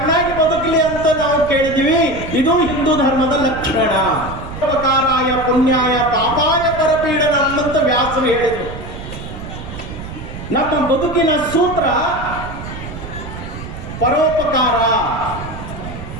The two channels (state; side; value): noise; right; rumble, 10 dB below the sound